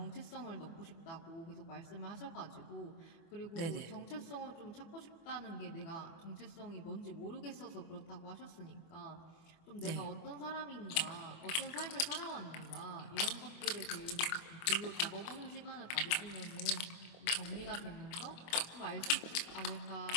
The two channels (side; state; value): right; late; 24 ms